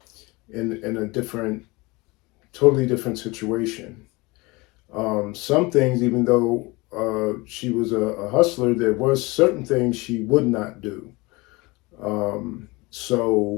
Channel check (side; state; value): right; quieter; 24.2 dB